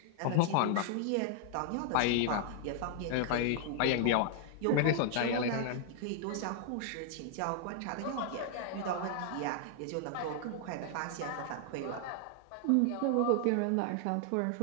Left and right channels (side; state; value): both; different; correlation 0.00